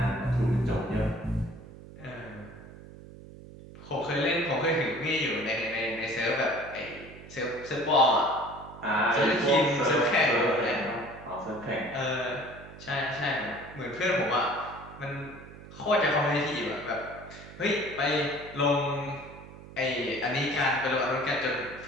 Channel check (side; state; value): right; noise; hum, 17 dB below the sound